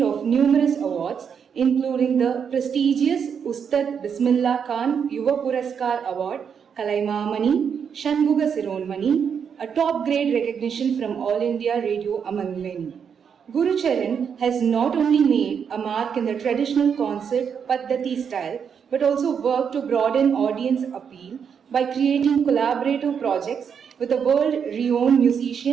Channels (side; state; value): left; quieter; 7.1 dB